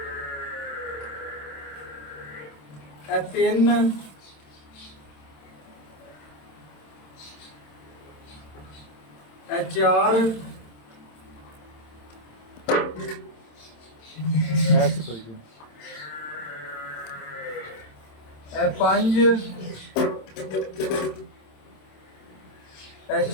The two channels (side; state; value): right; late; 27 ms